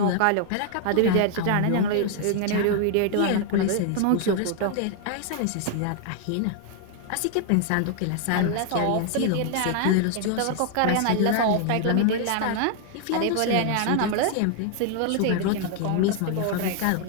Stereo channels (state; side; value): different; both; correlation 0.00